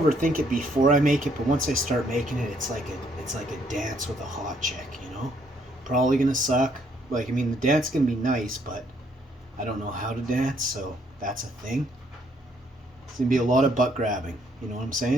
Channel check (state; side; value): normal; both; correlation 0.68